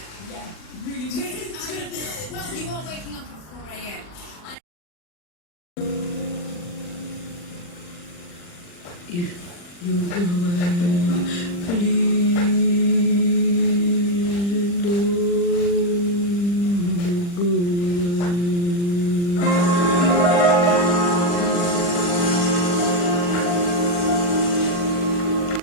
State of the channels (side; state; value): right; late; 40 ms